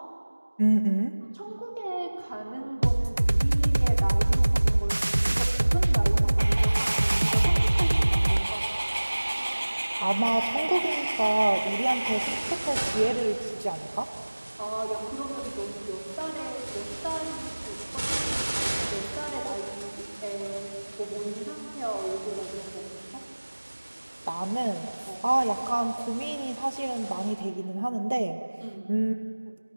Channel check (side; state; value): both; inverted; correlation -1.00